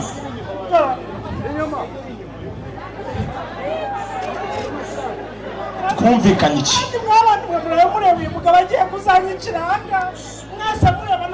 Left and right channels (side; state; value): both; identical; correlation 1.00